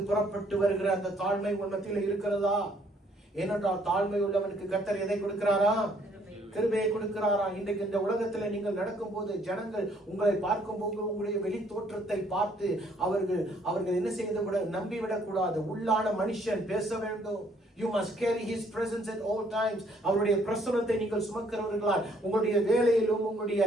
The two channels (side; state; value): both; normal; correlation 0.65